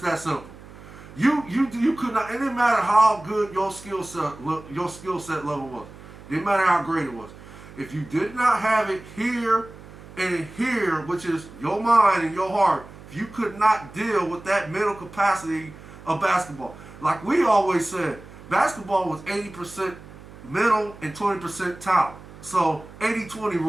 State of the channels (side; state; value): right; noise; hum, 18 dB below the sound